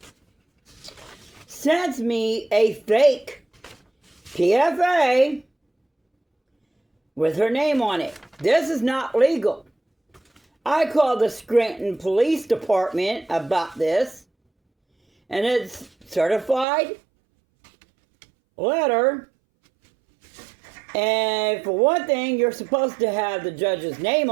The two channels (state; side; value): drops out; left; at 16.7 s